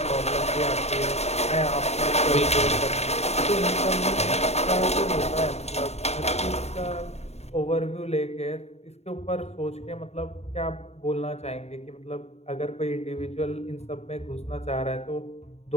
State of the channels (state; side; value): late; right; 0.31 ms